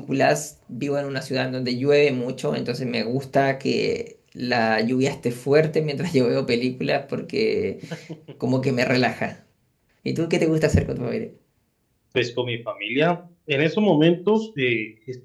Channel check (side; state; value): both; identical; correlation 1.00